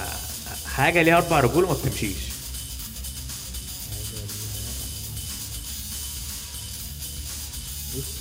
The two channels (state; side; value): identical; both; correlation 1.00